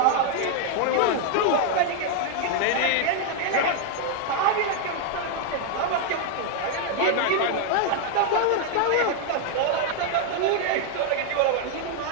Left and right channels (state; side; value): different; both; correlation 0.00